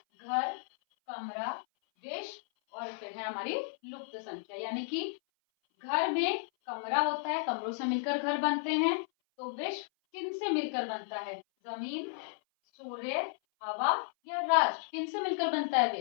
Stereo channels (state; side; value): silent; right; 55 dB below the other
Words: घर, कमरा, विष और फिर है हमारी लुप्त संख्या। यानी कि घर में कमरा होता है, कमरों से मिलकर घर बनते हैं। तो विष किन से मिलकर बनता है? जमीन, सूर्य, हवा या राष्ट्र, किन से मिलकर बनता है